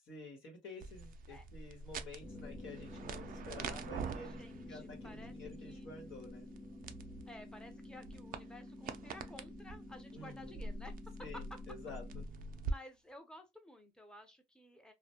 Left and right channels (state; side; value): normal; both; correlation 0.58